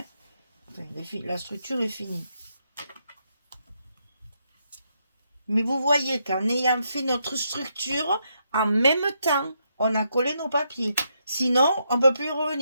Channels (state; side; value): inverted; both; correlation -0.79